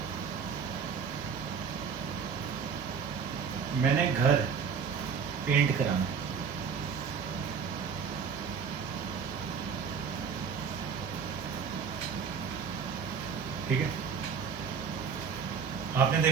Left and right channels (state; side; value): quieter; left; 6.2 dB